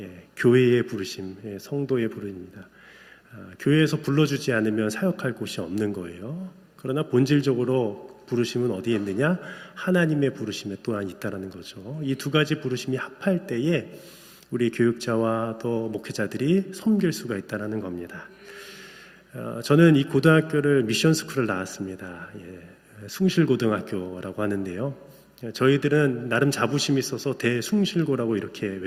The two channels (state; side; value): identical; both; correlation 1.00